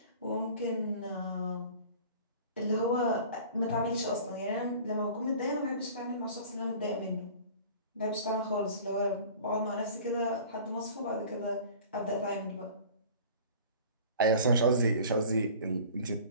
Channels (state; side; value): inverted; both; correlation -0.44